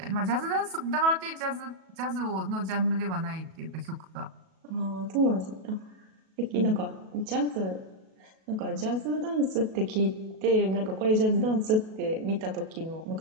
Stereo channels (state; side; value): late; left; 37 ms